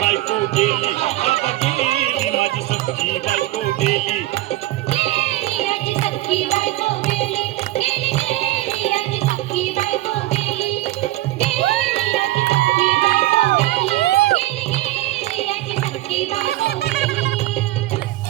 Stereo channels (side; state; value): left; quieter; 17.0 dB